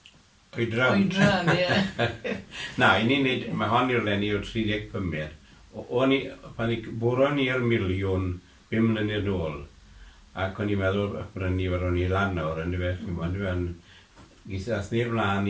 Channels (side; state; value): both; identical; correlation 1.00